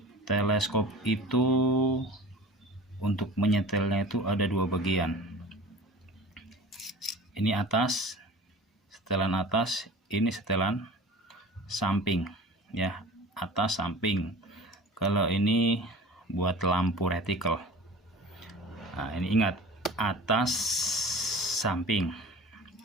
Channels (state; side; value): normal; both; correlation 0.40